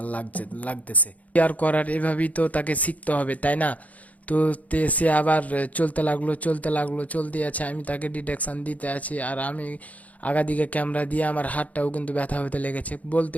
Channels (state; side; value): late; right; 0.072 ms